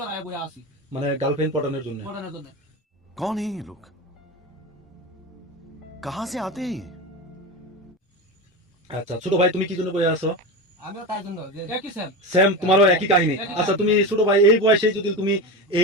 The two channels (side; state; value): both; normal; correlation 0.22